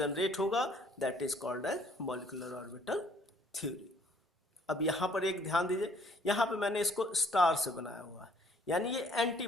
होगा that is called as molecular orbital theory. अब यहाँ पर एक ध्यान दीजिए, यहाँ पे मैंने इसको स्टार से बनाया हुआ है, यानी ये एंटी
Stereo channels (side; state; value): both; normal; correlation 0.61